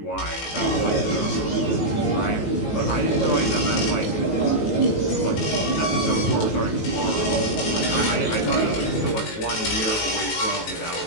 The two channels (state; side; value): late; right; 18 ms